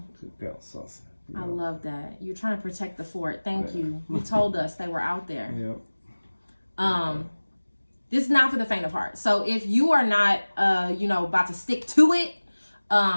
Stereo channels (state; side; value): inverted; both; correlation -1.00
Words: Good girl, Saucy. I love that. You're trying to protect the fort. Thank you. You told us they were out there. Yep. This is not for the faint of heart. So if you are not, you know, about to stick to it,